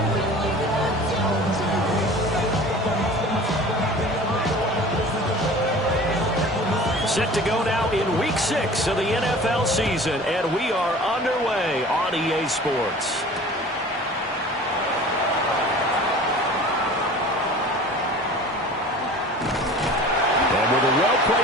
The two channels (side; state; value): both; normal; correlation 0.42